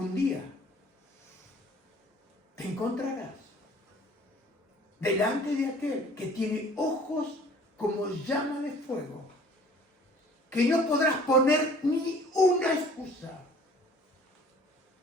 día te encontrarás delante de aquel que tiene ojos como llama de fuego, que no podrás poner ni una excusa,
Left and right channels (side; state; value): both; normal; correlation 0.51